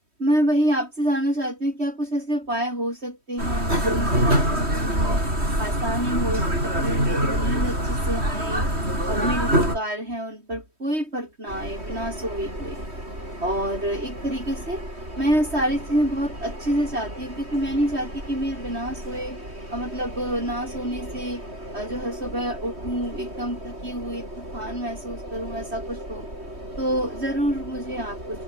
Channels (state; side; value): late; left; 3.1 ms